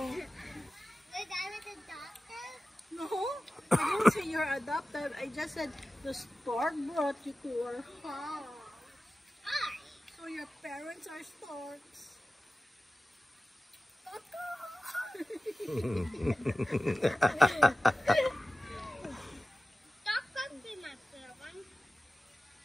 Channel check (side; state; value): both; normal; correlation 0.95